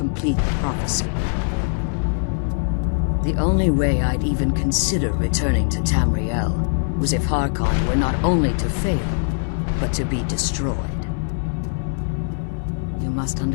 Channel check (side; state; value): right; silent; digital silence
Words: the prophecy. The only way I'd even consider returning to Tamriel was if Harkon were not only to fail, but to be destroyed. You must